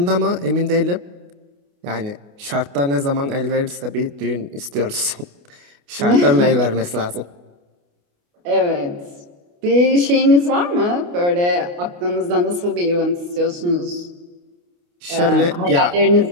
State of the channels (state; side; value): late; left; 28 ms